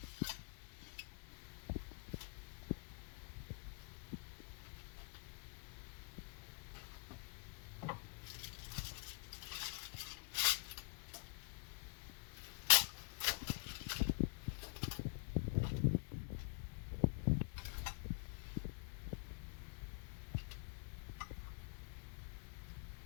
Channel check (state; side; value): quieter; right; 28.1 dB